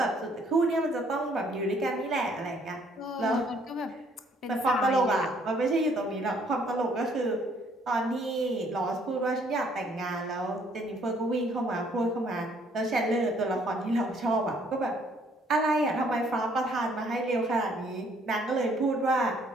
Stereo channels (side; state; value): both; normal; correlation 0.64